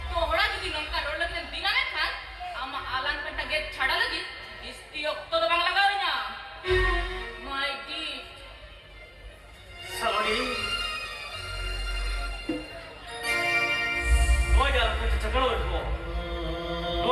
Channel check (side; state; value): both; identical; correlation 1.00